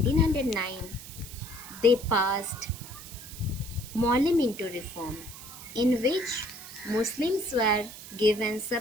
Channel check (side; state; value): right; noise; hiss, 14 dB below the sound